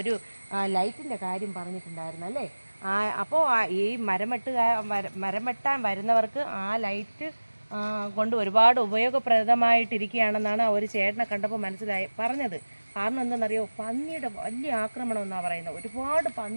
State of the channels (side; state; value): both; inverted; correlation -1.00